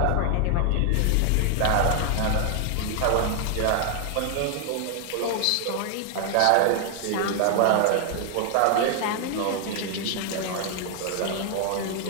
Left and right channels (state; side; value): different; both; correlation 0.00